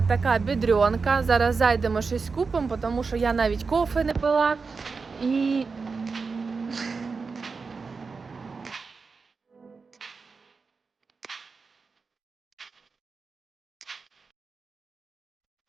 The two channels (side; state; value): left; quieter; 4.7 dB